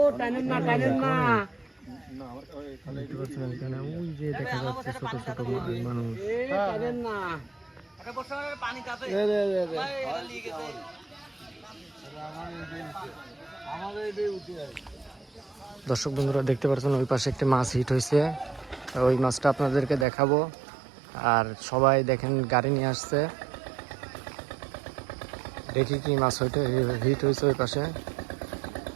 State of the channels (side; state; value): left; drops out; at 20.1 s